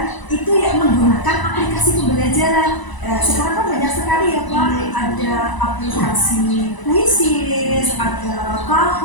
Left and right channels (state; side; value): late; right; 1.0 ms